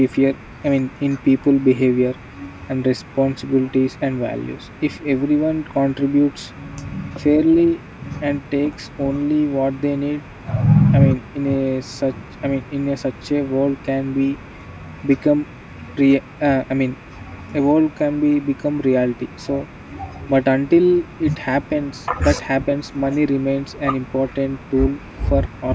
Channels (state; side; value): identical; both; correlation 1.00